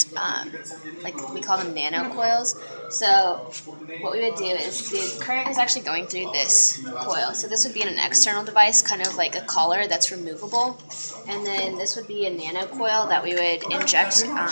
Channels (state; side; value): inverted; both; correlation -1.00